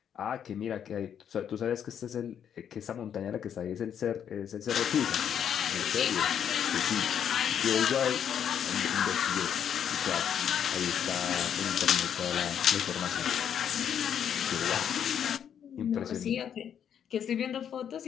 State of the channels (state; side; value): quieter; right; 8.7 dB